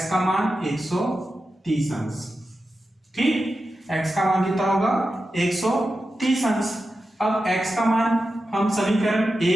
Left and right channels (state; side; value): normal; both; correlation 0.91